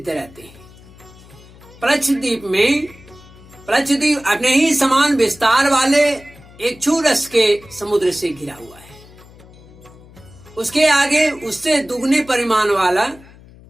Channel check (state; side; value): noise; left; hum, 22 dB below the sound